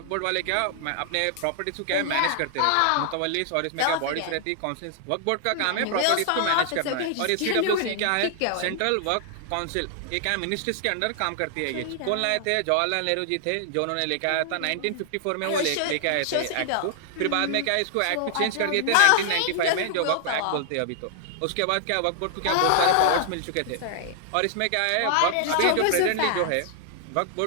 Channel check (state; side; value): different; both; correlation 0.00